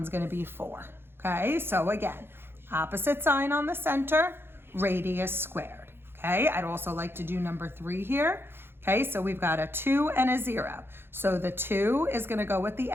going to be 4. Okay, so again, opposite sign on the center, radius squared. Okay, I'd also like to do number 3 here. Okay, so we've got a 2 and a 0. So the 2 is going to go with the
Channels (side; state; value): left; late; 0.11 ms